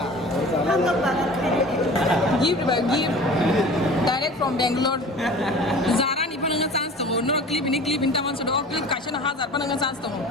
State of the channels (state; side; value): normal; both; correlation 0.41